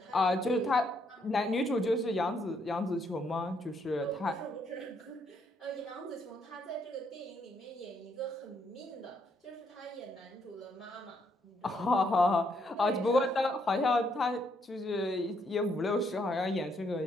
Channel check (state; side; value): normal; both; correlation 0.73